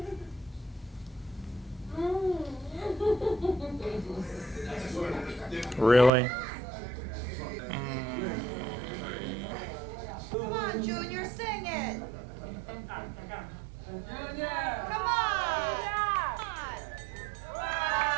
Really? Come on, Junior, sing it. Come on.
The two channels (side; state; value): left; drops out; at 6.1 s